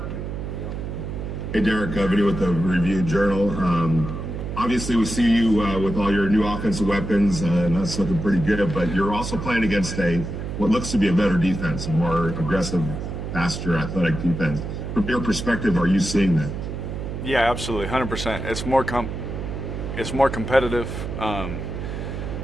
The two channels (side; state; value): right; noise; hum, 6 dB below the sound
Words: Hey, Derek, Vinny with the Review Journal. Obviously, we see you with all your new offensive weapons, and that's looking pretty good, but you're also playing against what looks to be a better defense, a more aggressive, faster, athletic defense. From your perspective, are you seeing that? Yeah, absolutely, 100%. It's more competitive.